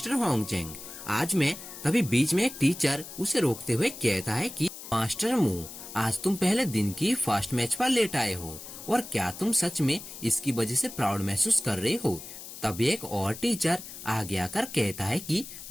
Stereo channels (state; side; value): noise; left; hiss, 13 dB below the sound